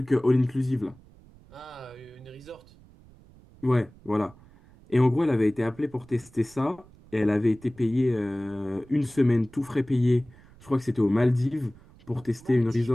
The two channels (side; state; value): right; noise; rumble, 25 dB below the sound